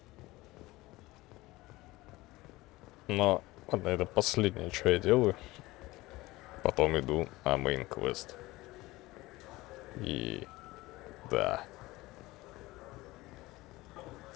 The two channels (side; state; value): right; quieter; 19.7 dB